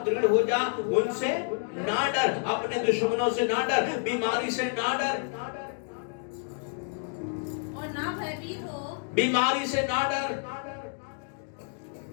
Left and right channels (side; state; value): right; silent; 59 dB below the other